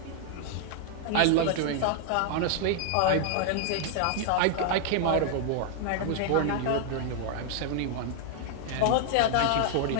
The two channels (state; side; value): different; both; correlation 0.00